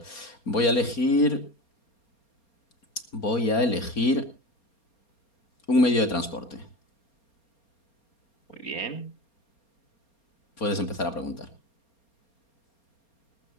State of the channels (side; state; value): right; late; 4.3 ms